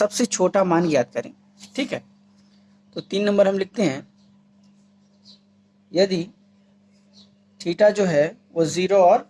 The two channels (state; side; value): identical; both; correlation 1.00